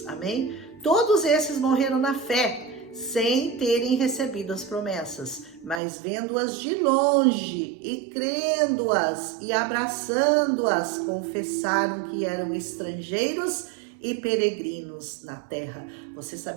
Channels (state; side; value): drops out; left; at 5.8 s